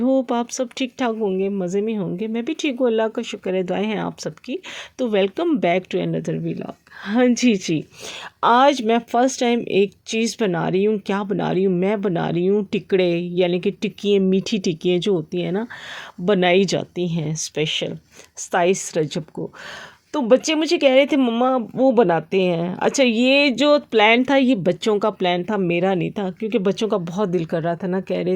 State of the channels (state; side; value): identical; both; correlation 1.00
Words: आप सब ठीक ठाक होंगे, मज़े में होंगे। मैं भी ठीक हूँ, अल्लाह का शुक्र है, दुआएं हैं आप सबकी। तो welcome back to another vlog. हाँ जी, आज मैं फ़र्स्ट टाइम एक चीज़ बना रही हूँ। क्या बना रही हूँ? मैं बना रही हूँ टिकड़े, यानी कि टिक्कियाँ, मीठी टिक्कियाँ जो होती हैं ना, बनाई जाती हैं स्पेशल 27 रजब को। तो बच्चे मुझे कह रहे थे मम्मा वो बनाते हैं। अच्छा, ये जो प्लान था ये बच्चों का प्लान था, मेरा नहीं था, क्योंकि बच्चों का बहुत दिल कर रहा था ना, कह रहे